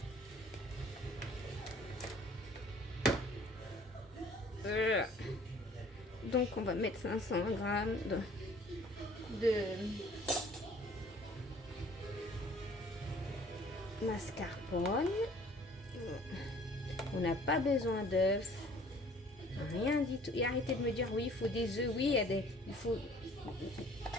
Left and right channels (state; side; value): normal; both; correlation 0.53